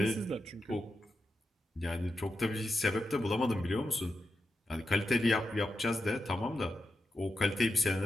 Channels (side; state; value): both; normal; correlation 0.87